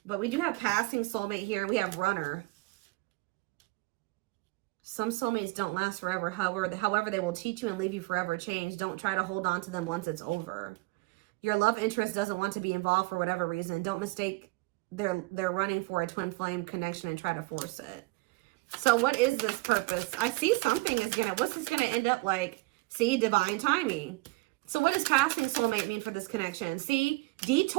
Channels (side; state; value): left; quieter; 25.2 dB